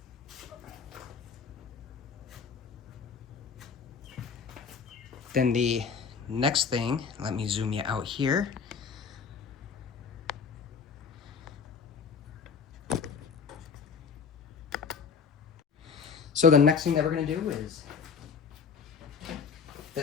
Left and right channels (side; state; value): right; quieter; 6.1 dB